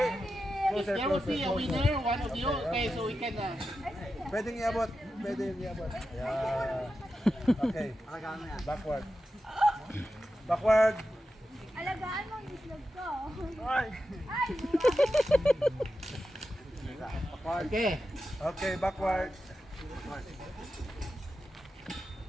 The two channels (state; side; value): normal; both; correlation 0.90